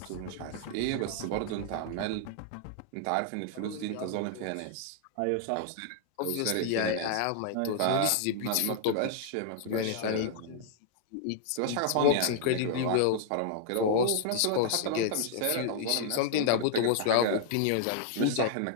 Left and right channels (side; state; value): both; different; correlation -0.01